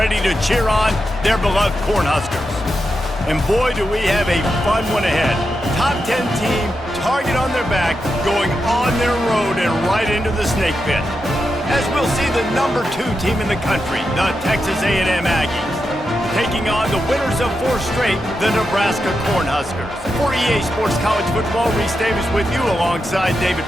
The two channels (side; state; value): both; normal; correlation 0.87